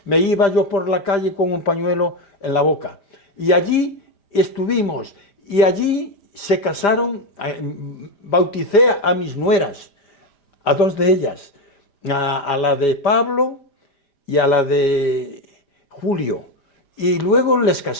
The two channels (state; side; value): late; right; 5.0 ms